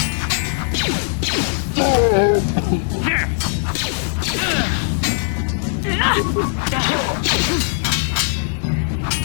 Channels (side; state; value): right; silent; digital silence